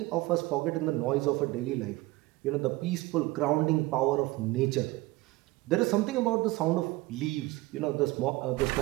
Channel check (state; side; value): quieter; left; 20.0 dB